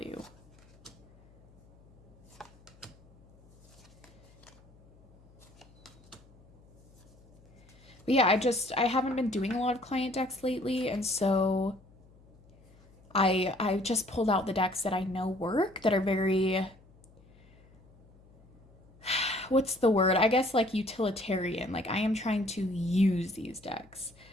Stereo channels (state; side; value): noise; left; hum, 26 dB below the sound